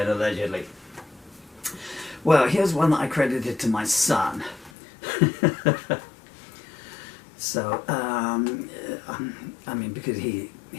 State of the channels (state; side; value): drops out; right; at 4.7 s